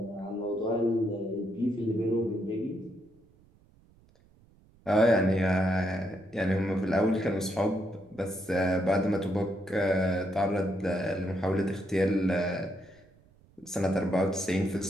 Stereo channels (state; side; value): noise; right; rumble, 29 dB below the sound